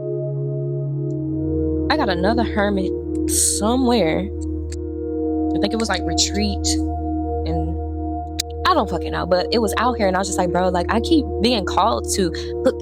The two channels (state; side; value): identical; both; correlation 1.00